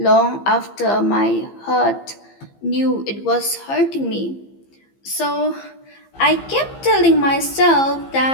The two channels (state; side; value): late; right; 15 ms